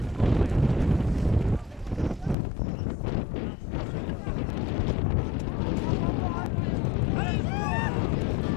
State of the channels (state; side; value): drops out; right; at 2.4 s